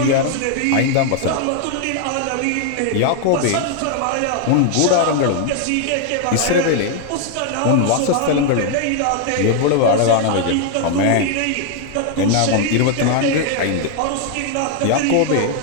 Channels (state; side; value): different; both; correlation 0.00